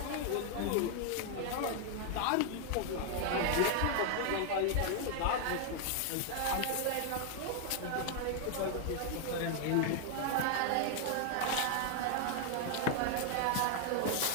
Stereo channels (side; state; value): both; different; correlation 0.00